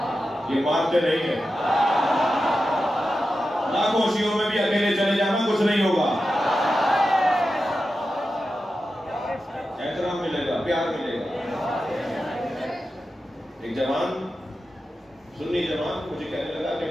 یہ مانتے نہیں ہیں، لاکھوں شیعوں میں بھی اکیلے چلے جانا کچھ نہیں ہوگا، احترام ملے گا، پیار ملے گا۔ ایک جوان سنی جوان مجھے کہنے لگا کہ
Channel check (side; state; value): both; normal; correlation 0.91